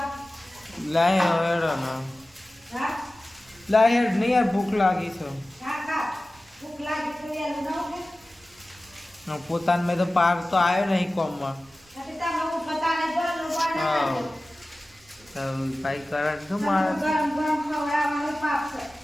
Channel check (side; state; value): right; noise; rumble, 29 dB below the sound